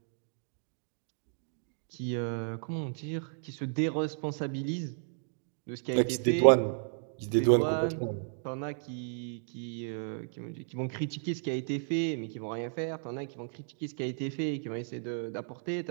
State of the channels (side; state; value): left; silent; digital silence